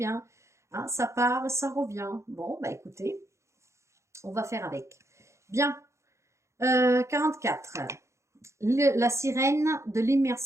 hein, ça part, ça revient. Bon, bah écoutez, on va faire avec. Bien, 44. La sirène de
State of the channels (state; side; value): late; left; 0.14 ms